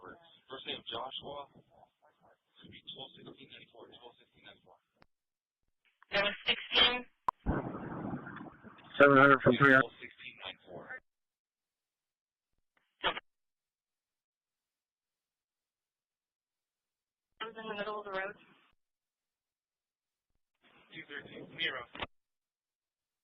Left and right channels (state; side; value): identical; both; correlation 1.00